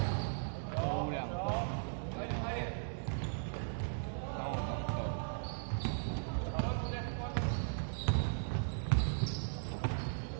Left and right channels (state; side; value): silent; left; digital silence